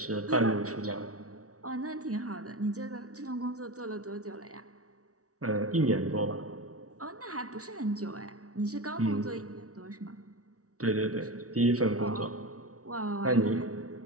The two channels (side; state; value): left; late; 0.66 ms